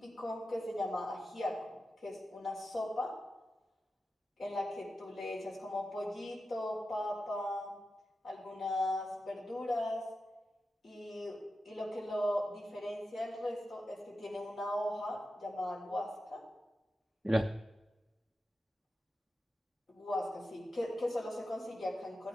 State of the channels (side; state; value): both; normal; correlation 0.91